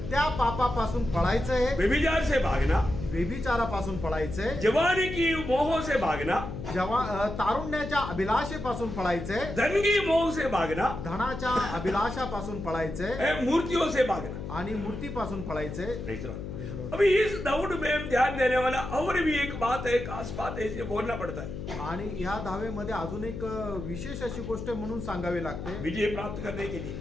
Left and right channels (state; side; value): noise; left; hum, 7 dB below the sound